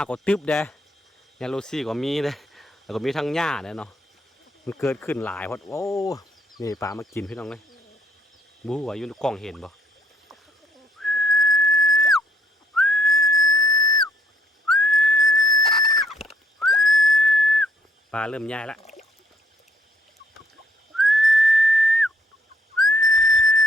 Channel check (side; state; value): both; normal; correlation 0.66